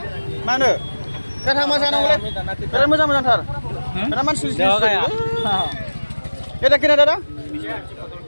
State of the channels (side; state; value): both; inverted; correlation -1.00